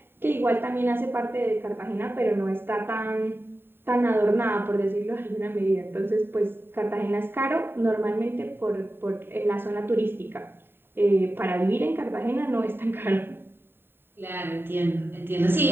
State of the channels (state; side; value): late; left; 0.11 ms